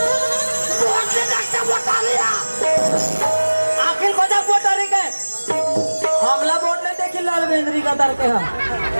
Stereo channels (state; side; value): inverted; both; correlation -1.00